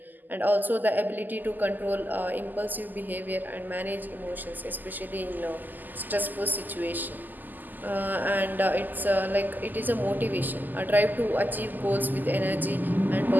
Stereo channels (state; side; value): late; left; 0.086 ms